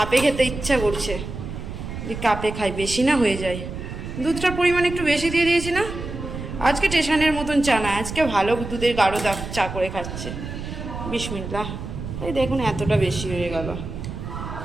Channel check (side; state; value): right; noise; rumble, 8 dB below the sound